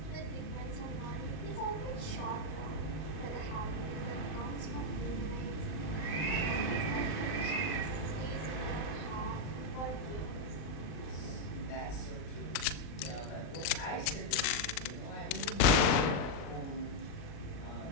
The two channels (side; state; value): right; late; 40 ms